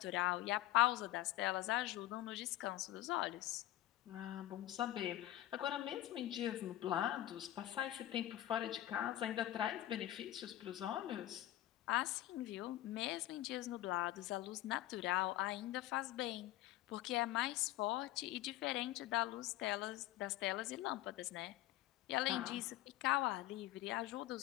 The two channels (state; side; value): quieter; right; 14.9 dB